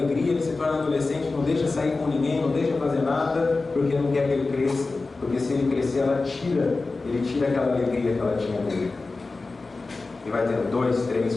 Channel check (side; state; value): right; quieter; 3.7 dB